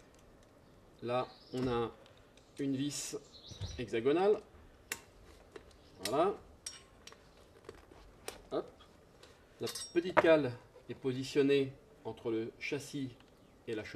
là, on a une vis hexagonale. Voilà. Hop. La petite cale est positionnée entre le châssis et la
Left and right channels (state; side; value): identical; both; correlation 1.00